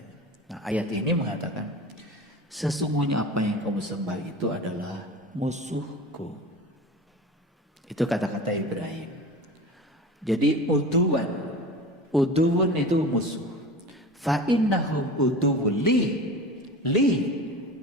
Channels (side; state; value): both; normal; correlation 0.34